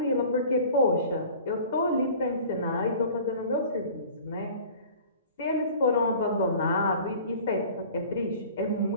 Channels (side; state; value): both; inverted; correlation -0.45